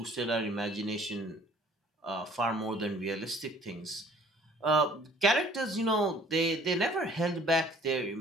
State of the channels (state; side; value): normal; both; correlation 0.54